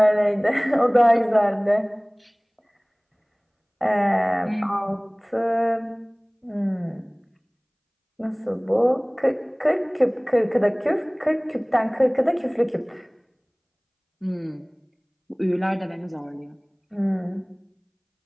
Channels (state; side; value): identical; both; correlation 1.00